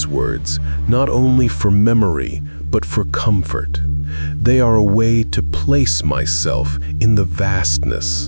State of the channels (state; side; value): inverted; both; correlation -1.00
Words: words not only for memory, but for comfort. They are a way to place myself in the